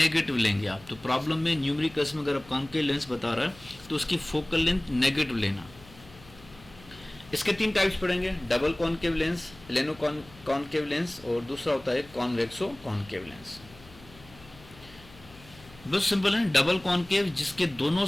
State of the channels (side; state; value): left; noise; hum, 22 dB below the sound